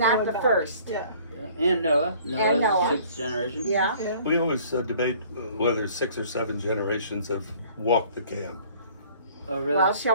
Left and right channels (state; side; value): inverted; both; correlation -0.54